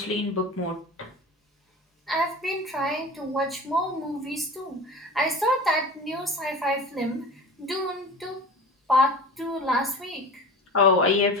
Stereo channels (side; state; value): both; normal; correlation 0.34